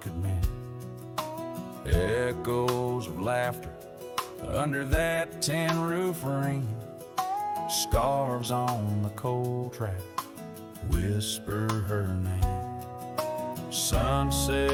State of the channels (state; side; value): identical; both; correlation 1.00